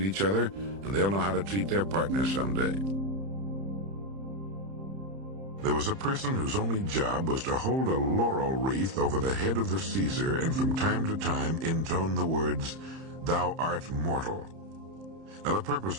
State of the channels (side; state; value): left; late; 30 ms